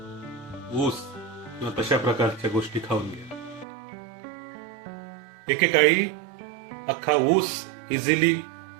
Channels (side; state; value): left; drops out; at 3.7 s